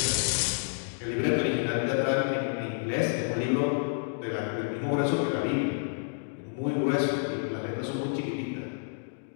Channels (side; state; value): right; silent; digital silence